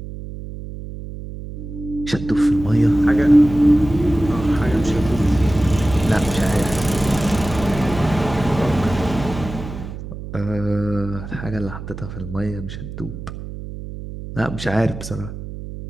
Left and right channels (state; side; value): noise; right; hum, 10 dB below the sound